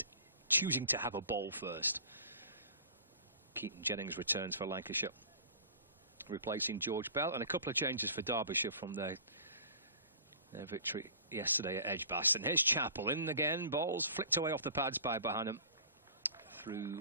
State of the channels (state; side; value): inverted; both; correlation -0.44